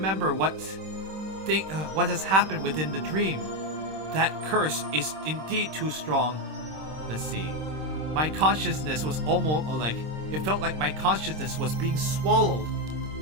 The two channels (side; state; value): left; late; 26 ms